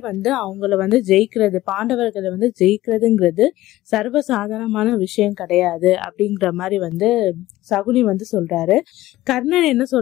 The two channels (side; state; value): right; quieter; 16.2 dB